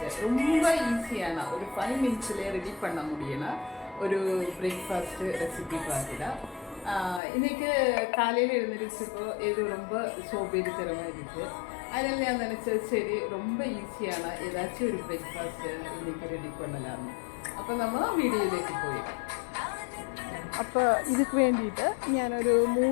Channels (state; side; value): drops out; right; at 7.2 s